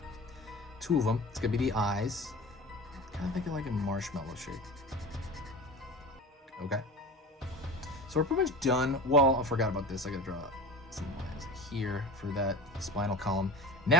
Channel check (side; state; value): both; normal; correlation 0.34